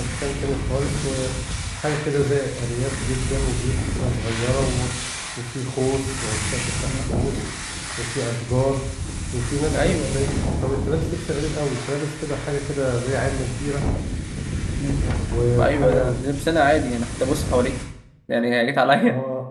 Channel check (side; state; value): both; identical; correlation 1.00